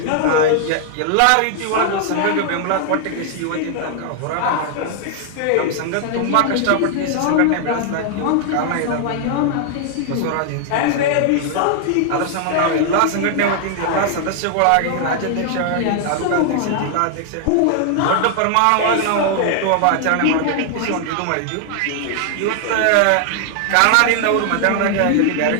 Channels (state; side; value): different; both; correlation 0.00